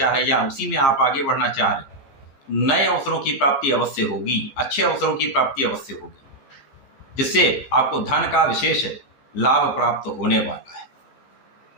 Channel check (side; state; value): right; late; 14 ms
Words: रहे हैं या उसी में आप आगे बढ़ना चाह रहे हैं, नए अवसरों की प्राप्ति अवश्य होगी, अच्छे अवसरों की प्राप्ति अवश्य होगी, जिससे आपको धन का विशेष लाभ प्राप्त होने वाला है।